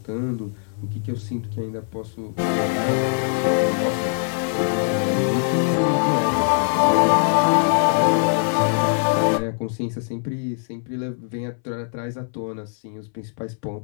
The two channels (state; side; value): silent; right; 64 dB below the other